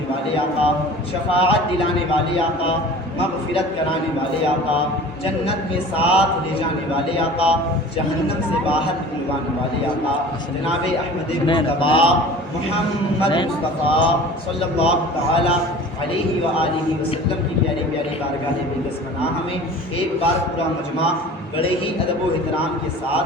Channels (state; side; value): normal; both; correlation 0.41